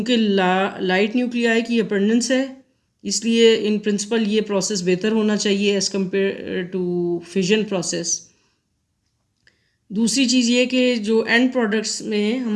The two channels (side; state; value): both; identical; correlation 1.00